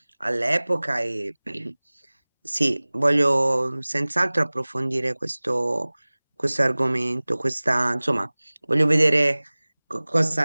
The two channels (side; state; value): both; inverted; correlation -1.00